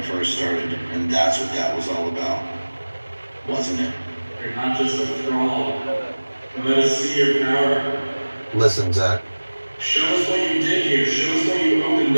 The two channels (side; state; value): both; inverted; correlation -1.00